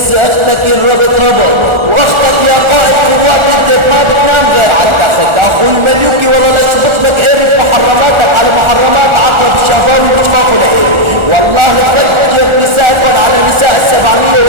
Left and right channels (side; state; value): left; late; 1.4 ms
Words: اختك الربط ربط واختك يا قائد قوات اكذب ما بتنام غير على التخت. اخو المنيوكي والله لا شفت لك قيري بمحرماتك على محرمات عقرب الشافاوي بشخاخه لقيري. والله لفجر نسائكم على نساء